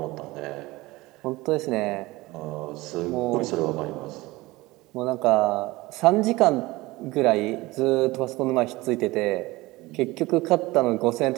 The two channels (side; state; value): left; quieter; 20.4 dB